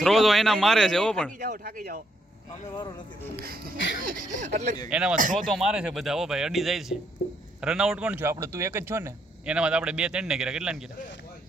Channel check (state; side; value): normal; both; correlation 0.74